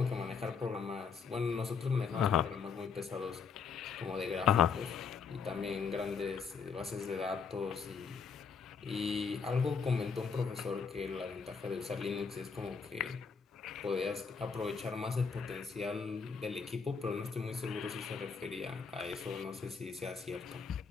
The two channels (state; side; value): quieter; right; 5.8 dB